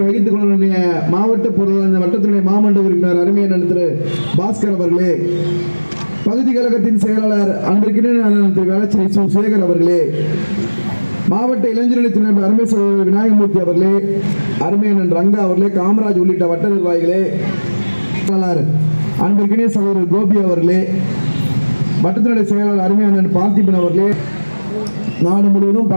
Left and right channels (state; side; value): inverted; both; correlation -1.00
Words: வகித்துக் கொள்ள மாவட்ட பொருளாதார வட்டத்தினுடைய மாமன்ற உறுப்பினர் அருமையான திரு பாஸ்கர் அவர்களே, பகுதி கழகத்தின் செயலாளர் அன்பிற்கினிய திரு வேளச்சேரி சு சேகர் அவர்களே, மாவட்ட இளைஞரணி துணை அருமை சகோதரர் விநாயகமூர்த்தி அவர்களே, அருமையான ரங்கா அவர்களே, காமராஜ் உள்ளிட்ட வட்ட நிர்வாகிகளே, அன்பிற்கினிய சகோதரர் கோபி அவர்களே, வட்டத்தினுடைய செயலாளர் அருமையான பார்த்திபன் அவர்களே. நாடு முழுவதும்